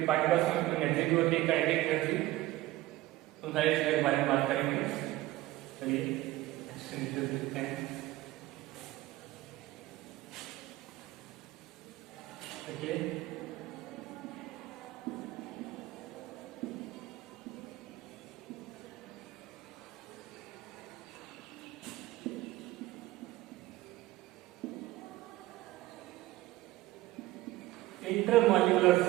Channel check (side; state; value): left; quieter; 17.2 dB